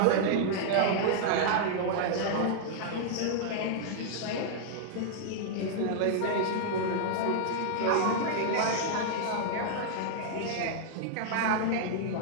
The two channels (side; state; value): both; different; correlation -0.01